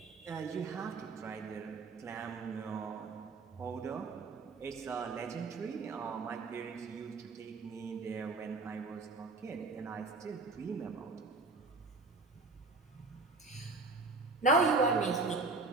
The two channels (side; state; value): left; quieter; 3.7 dB